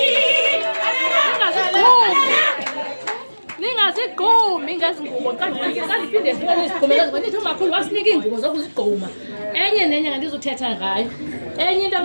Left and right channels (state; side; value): inverted; both; correlation -1.00